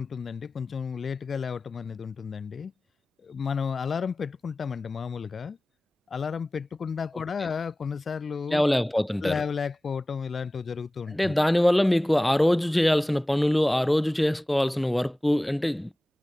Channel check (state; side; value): normal; both; correlation 0.98